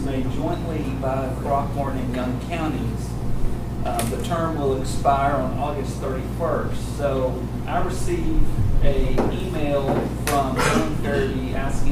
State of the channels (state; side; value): identical; both; correlation 1.00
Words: made jointly by Throckmorton and Young counties. The term will expire on August 31st. So I received an email from Helen Farabee